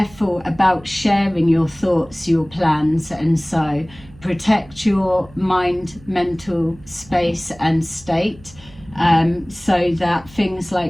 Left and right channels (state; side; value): noise; right; hum, 23 dB below the sound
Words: about sharing your thoughts, your plans, and so protect your mind, mental space and state, so that things